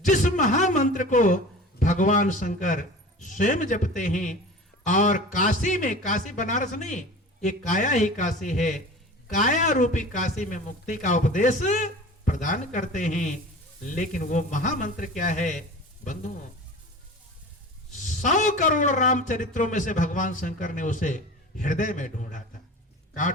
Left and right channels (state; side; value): normal; both; correlation 0.37